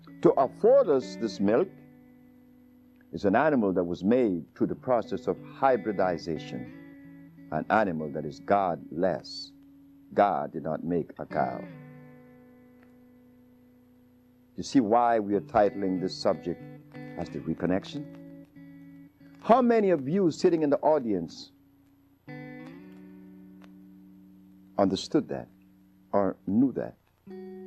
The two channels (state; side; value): identical; both; correlation 1.00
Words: to afford us this milk is an animal that was made through the process of hybridization, an animal that is godless. God did not make a cow. You see why we are titling this subject as the reconnection? How many of you sitting in the audience understood that or knew that?